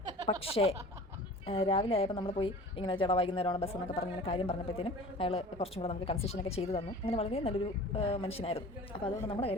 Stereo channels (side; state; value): both; normal; correlation 0.42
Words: പക്ഷേ രാവിലെ ആയപ്പോൾ നമ്മൾ പോയി ഇങ്ങനെ ചേട്ടാ വൈകുന്നേരമാണ് ബസ് എന്നൊക്കെ പറഞ്ഞ് ഇങ്ങനെ കാര്യം പറഞ്ഞപ്പോഴത്തേനും അയാൾ കുറച്ചും കൂടെ നമുക്ക് കൺസെഷനൊക്കെ ചെയ്തു തന്നു. അങ്ങനെ വളരെ നല്ലൊരു മനുഷ്യനായിരുന്നു. അപ്പോൾ അതുകൊണ്ട് നമ്മുടെ